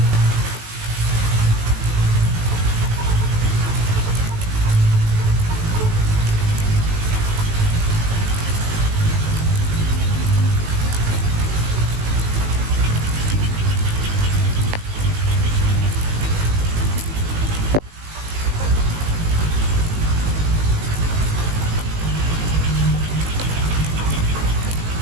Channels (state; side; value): late; left; 18 ms